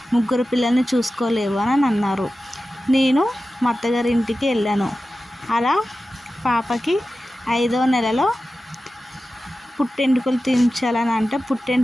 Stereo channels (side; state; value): both; normal; correlation 0.94